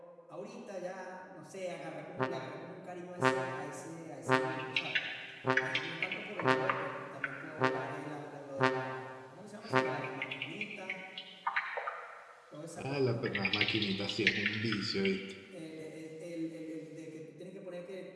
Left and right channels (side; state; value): both; identical; correlation 1.00